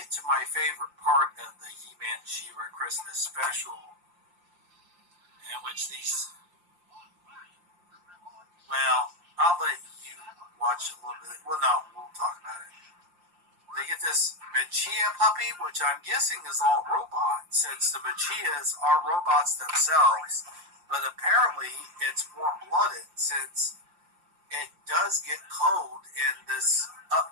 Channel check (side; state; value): left; late; 5.7 ms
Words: to my favorite part of the He-Man She-Ra Christmas special, in which these, I'll let you watch a little bit. Well, no, we'll talk about it. They get this Machia puppy, which I'm guessing is all robot, since the Machias are robots themselves. But apparently it's warm-blooded, since it does get cold in this